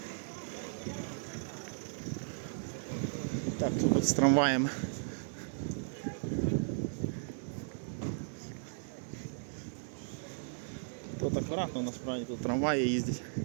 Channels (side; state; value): left; silent; digital silence